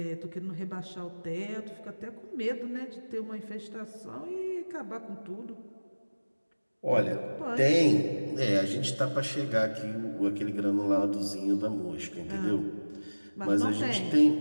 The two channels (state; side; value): inverted; both; correlation -1.00